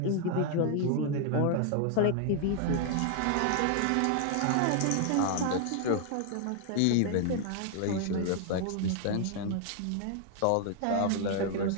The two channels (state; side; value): different; both; correlation 0.00